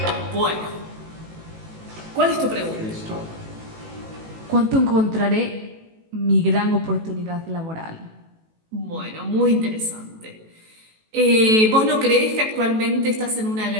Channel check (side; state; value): left; late; 18 ms